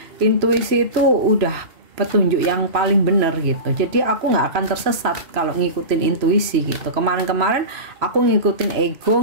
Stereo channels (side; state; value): left; late; 3.0 ms